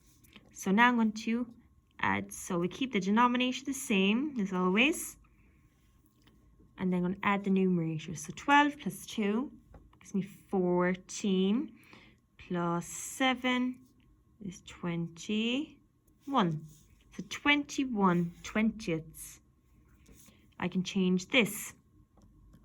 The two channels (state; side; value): identical; both; correlation 1.00